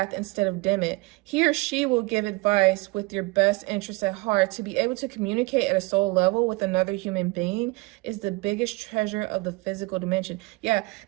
instead of dim it. He or she will give advice with your best interests at heart. To be able to communicate at a soul level with another human being is the biggest treasure of the physical dimension. Yeah,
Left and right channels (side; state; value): left; quieter; 24.7 dB